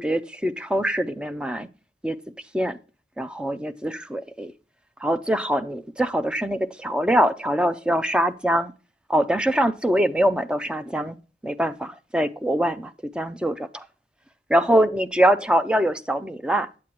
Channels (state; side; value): normal; both; correlation 0.83